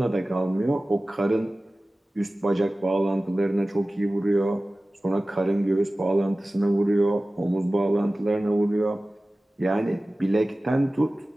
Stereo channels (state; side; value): normal; both; correlation 0.97